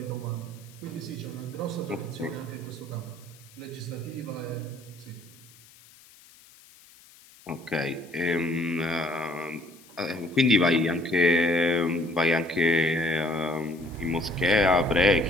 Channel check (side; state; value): left; noise; hiss, 24 dB below the sound